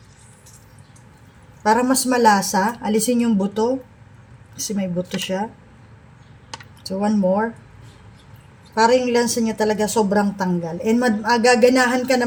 Para mas malasa, alisin yung buto. Kasi may buto siya. So, one more. Para yung lansa niya talaga sobrang tanggal. And magaganahan ka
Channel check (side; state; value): both; identical; correlation 1.00